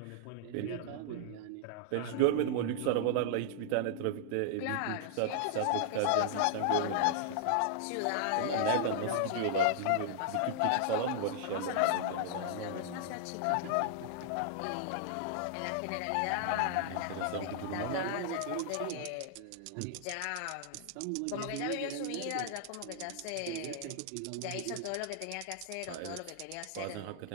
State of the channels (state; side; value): different; both; correlation -0.01